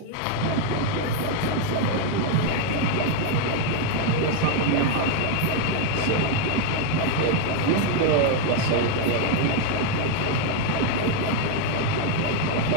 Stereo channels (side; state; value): both; different; correlation 0.01